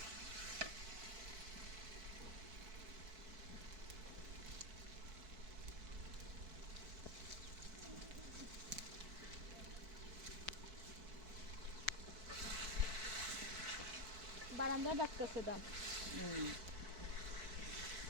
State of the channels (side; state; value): left; late; 4.5 ms